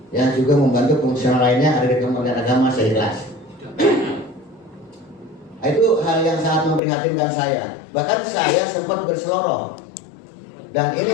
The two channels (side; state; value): right; drops out; at 6.8 s